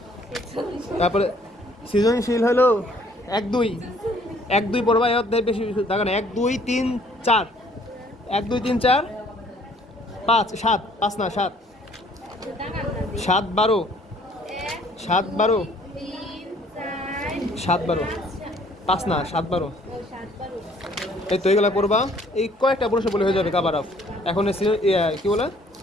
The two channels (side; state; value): both; normal; correlation 0.60